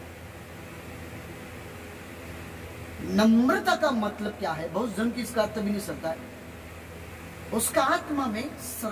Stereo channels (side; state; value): both; identical; correlation 1.00